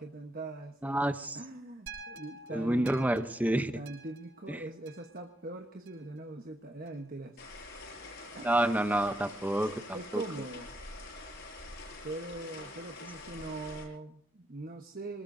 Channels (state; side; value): normal; both; correlation 0.79